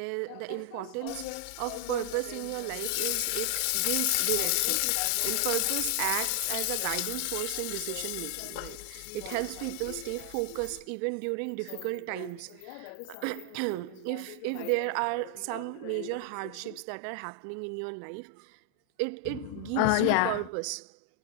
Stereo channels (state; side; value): different; both; correlation 0.00